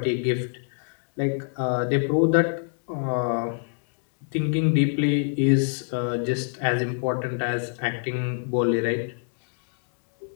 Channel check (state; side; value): silent; right; digital silence